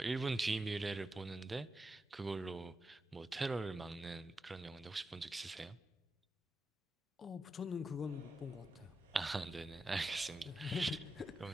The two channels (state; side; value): normal; both; correlation 0.89